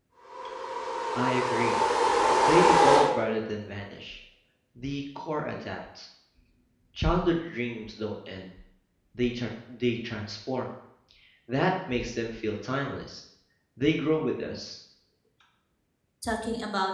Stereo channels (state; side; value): identical; both; correlation 1.00